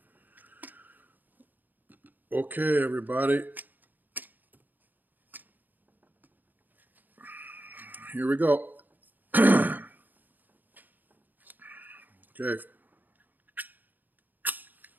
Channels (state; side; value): late; left; 0.086 ms